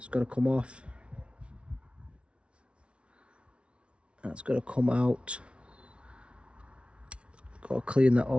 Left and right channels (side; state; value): left; late; 0.059 ms